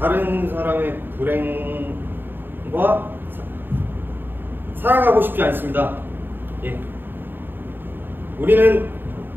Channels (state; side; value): late; left; 0.095 ms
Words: 다른 사람의 불행과 살아가고 싶지 않습니다. 예. 우리는